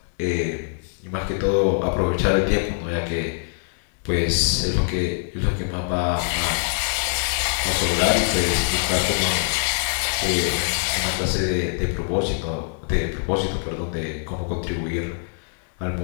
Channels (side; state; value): right; silent; 61 dB below the other